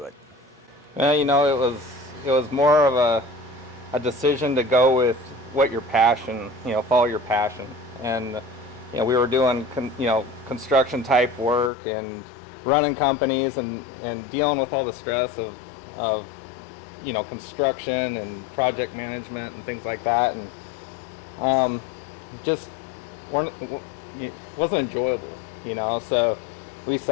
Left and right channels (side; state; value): right; drops out; at 11.7 s